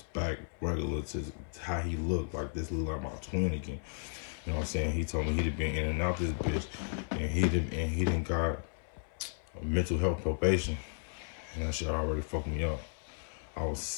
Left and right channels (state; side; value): silent; right; 55 dB below the other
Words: back regular to how he looked. Like this look like my twin again. You know what I'm saying? He told me he'd been in and out this bitch, and he didn't got mental health probation, and that shit already fucked me up. I was